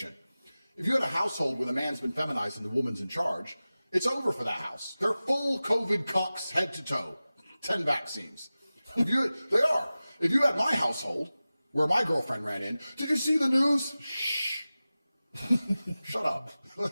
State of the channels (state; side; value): inverted; both; correlation -0.96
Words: If you had a household where the man's been feminized and the woman's in charge, it's over for that house. They're full COVID cucks head to toe. 10 vaccines. They are. If you had my household, where my girlfriend ran in, did you see the news? Shh. Shut up.